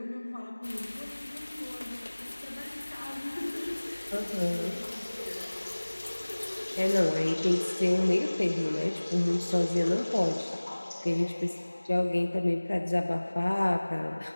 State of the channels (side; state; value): both; inverted; correlation -1.00